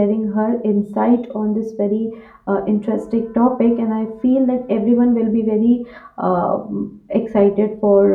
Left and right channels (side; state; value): both; identical; correlation 1.00